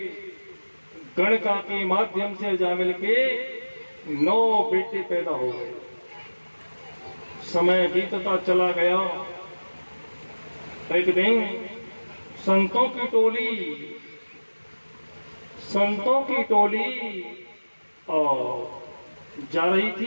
गणका के माध्यम से अजामिल के 9 बेटे पैदा हो गए। समय बीतता चला गया। एक दिन संतों की टोली और जा रही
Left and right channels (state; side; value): inverted; both; correlation -1.00